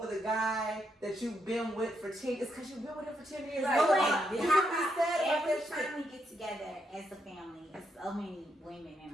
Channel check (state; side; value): normal; both; correlation 0.79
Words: the guy that you've been with for 10 years, it's because you've been with him for 10 years. Every time we get together as a family, there's so many women